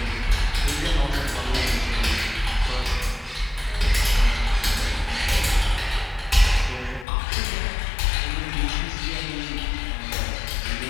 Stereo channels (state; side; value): drops out; right; at 7.1 s